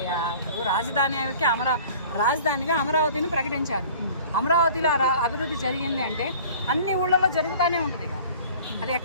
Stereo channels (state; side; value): inverted; both; correlation -0.46